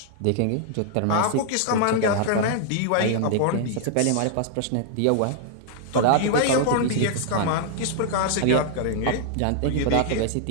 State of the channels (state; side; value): different; both; correlation -0.01